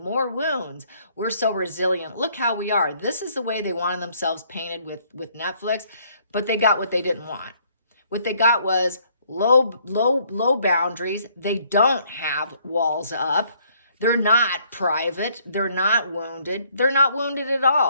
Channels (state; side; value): inverted; both; correlation -0.65